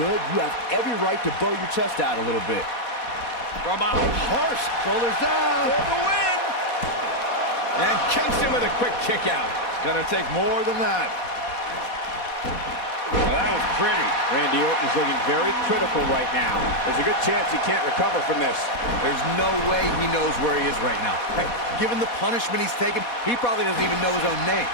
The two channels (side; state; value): right; late; 4.2 ms